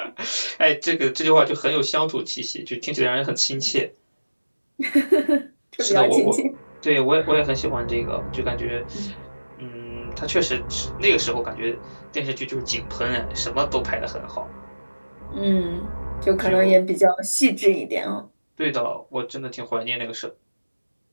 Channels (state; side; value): inverted; both; correlation -1.00